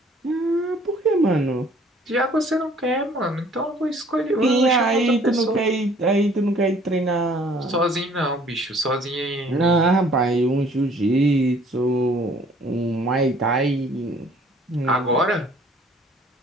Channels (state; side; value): normal; both; correlation 0.56